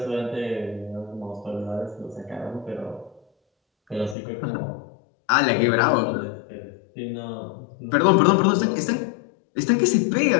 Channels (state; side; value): drops out; right; at 4.2 s